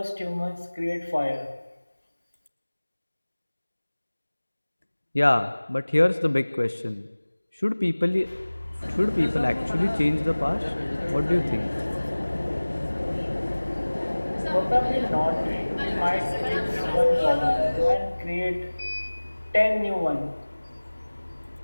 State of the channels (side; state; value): both; inverted; correlation -1.00